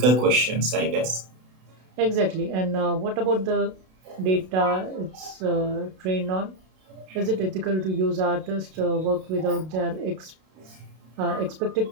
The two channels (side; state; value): left; late; 32 ms